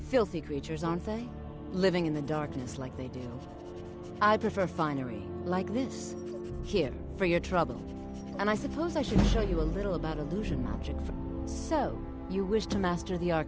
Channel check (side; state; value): both; identical; correlation 1.00